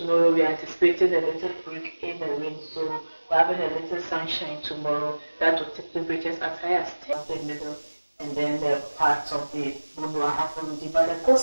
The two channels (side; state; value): both; inverted; correlation -1.00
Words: we are anticipating a little break in the rain, so we're having a little sunshine tomorrow. That will take temperatures as high as 10 in the middle, and then the parts of the Bono Ahafo region. But the